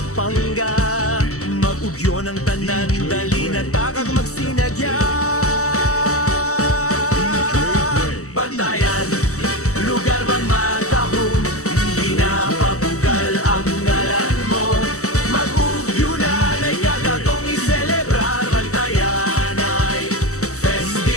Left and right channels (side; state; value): right; late; 0.65 ms